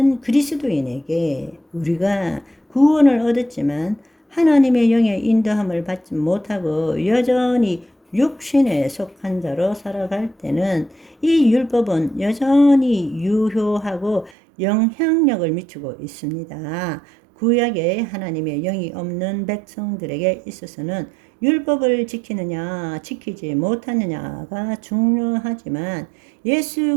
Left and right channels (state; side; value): drops out; left; at 14.4 s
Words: 그리스도인에게 우리가 구원을 얻었지만 하나님의 영의 인도함을 받지 못하고 여전히 육신에 속한 자로 살아갈 때는 이 율법은 여전히 유효하고 영향력을 미치고 있습니다. 구약에 하나님의 영이 없는 백성들에게 있어서는 율법을 지키느냐 지키지 못하느냐가 중요하지만,